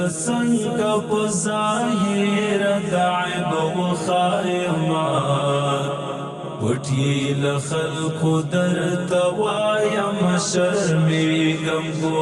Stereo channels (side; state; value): both; identical; correlation 1.00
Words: څنګه په ظاهر د عیب وښایمه پټي له خلکو درته وایم شرمېږم